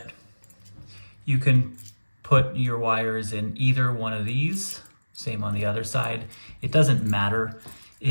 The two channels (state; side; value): inverted; both; correlation -1.00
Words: you can put your wires in either one of these. Same on the other side. It doesn't matter.